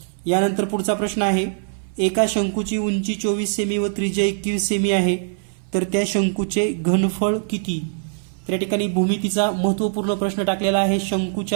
यानंतर पुढचा प्रश्न आहे, एका शंकूची उंची 24 सेमी व त्रिज्या 21 सेमी आहे तर त्या शंकूचे घनफळ किती। तर या ठिकाणी भूमितीचा महत्त्वपूर्ण प्रश्न टाकलेला आहे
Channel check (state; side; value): silent; left; 62 dB below the other